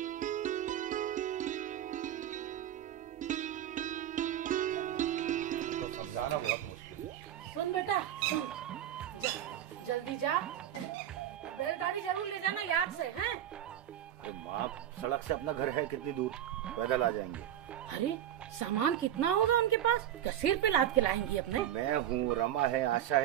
तो समझाना बहुत मुश्किल है। सुन बेटा सुन, जल्दी जा, बैलगाड़ी जरूर ले जाना याद से, हैं? अरे माँ, सड़क से अपना घर है कितनी दूर, पैदल आ जाएंगे। अरे सामान कितना होगा उनके पास? क्या सिर पे लाद के लाएंगी अपने? मैं हूँ, रमा है, आशा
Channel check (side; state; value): left; quieter; 11.3 dB